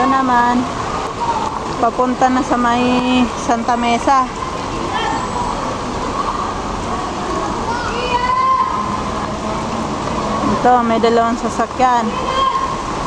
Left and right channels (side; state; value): both; identical; correlation 1.00